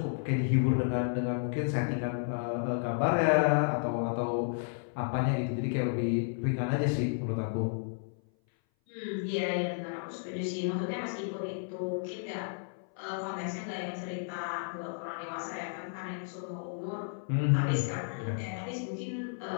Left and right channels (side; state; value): right; silent; 56 dB below the other